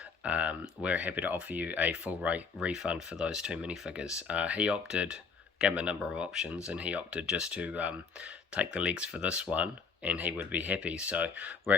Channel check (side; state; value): right; quieter; 5.2 dB